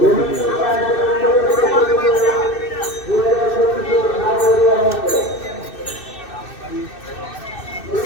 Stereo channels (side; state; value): right; late; 2.6 ms